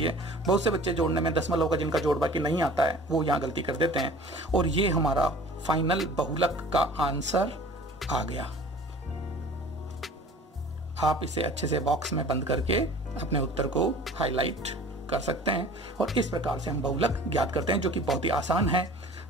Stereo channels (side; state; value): both; normal; correlation 0.45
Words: है। बहुत से बच्चे जोड़ने में दशमलव का जिनका जोड़ बाकी नहीं आता है वो यहाँ गलती कर देते हैं। और ये हमारा फाइनल बहुलक का आंसर आ गया। आप इसे अच्छे से बॉक्स में बंद करके अपने उत्तर को हाईलाइट कर सकते हैं, और इस प्रकार से हम बहुलक ज्ञात करते हैं, जो कि बहुत ही आसान है।